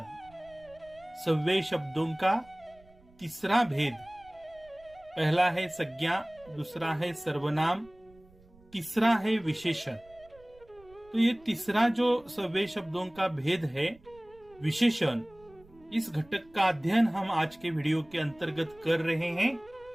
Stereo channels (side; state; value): right; noise; rumble, 27 dB below the sound